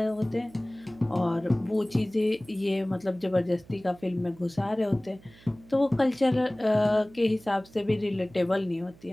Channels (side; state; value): right; noise; hum, 25 dB below the sound